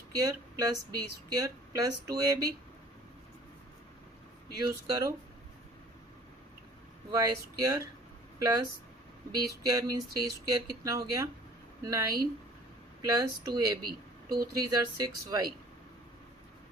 plus b square plus 2ab. Use करो y square plus b square means 3 square कितना हो गया 9 प्लस 2ab 2 3 ज़र 6y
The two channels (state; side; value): normal; both; correlation 0.53